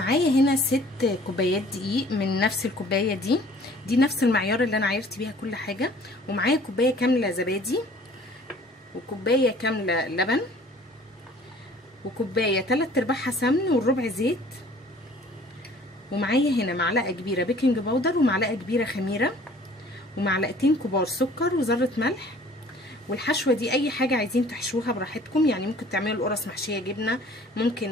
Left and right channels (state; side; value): normal; both; correlation 0.52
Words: هنا 6 كوبايات دقيق من نفس الكوبايه دي نفس المعيار اللي انا عايرت بيها كل حاجه. ومعايا كوبايه كامله زبادي، وكوبايه كامله لبن، وكوبايه 3/4 سمن والربع زيت. ومعايا هنا معلقه كبيره بيكنج باودر ومعلقه كبيره خميره ومعلقتين كبار سكر وذره ملح. والحشوه دي اي حاجه عايزين تحشوها براحتكم، يعني ممكن تعملوا القرص محشيه جبنه،